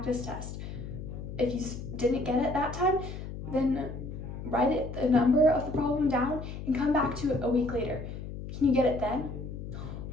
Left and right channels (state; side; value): noise; left; hum, 9 dB below the sound